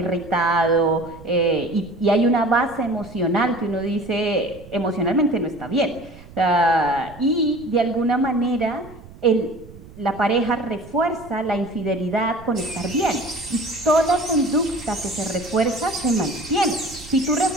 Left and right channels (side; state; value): right; noise; rumble, 19 dB below the sound